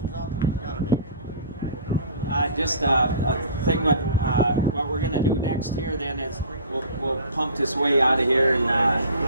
out there? Gotta be. Just a thing what we're gonna do next here then is we'll pump this way out of here and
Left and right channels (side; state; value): both; inverted; correlation -0.44